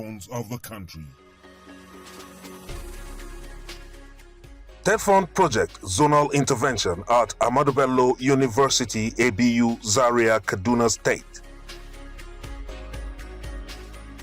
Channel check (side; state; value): both; identical; correlation 1.00